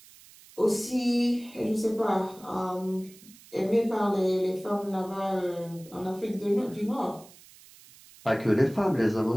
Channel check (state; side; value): noise; right; hiss, 23 dB below the sound